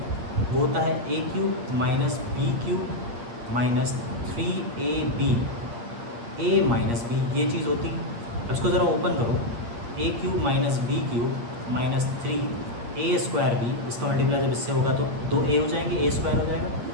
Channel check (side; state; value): left; late; 8.6 ms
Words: वो होता है ए cube minus B cube minus 3ab a minus B, ये चीज़ होती है। अब इसको ज़रा ओपन करो, A cube minus B cube minus 3a square B, इसका मल्टीप्लाई जब इससे होगा तो 2a हो जाएंगे, a स्क्वायर हो जाएगा,